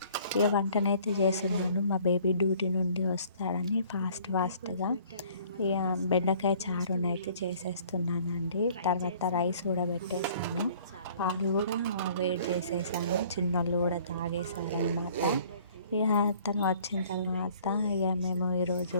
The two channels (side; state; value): both; inverted; correlation -0.55